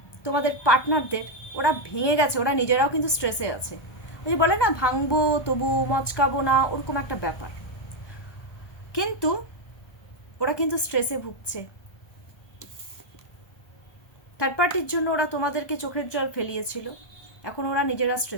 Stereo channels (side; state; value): right; late; 1.2 ms